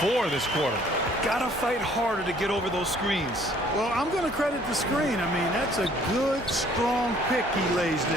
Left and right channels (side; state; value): both; normal; correlation 0.59